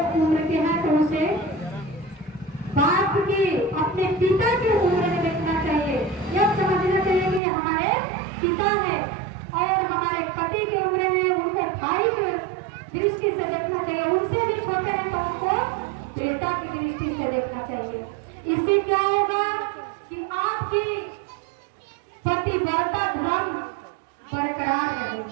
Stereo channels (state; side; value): drops out; left; at 7.4 s